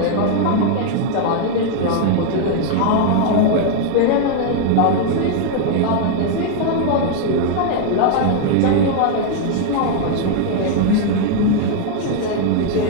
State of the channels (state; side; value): different; both; correlation 0.00